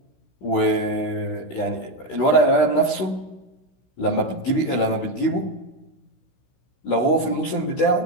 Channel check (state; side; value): late; right; 16 ms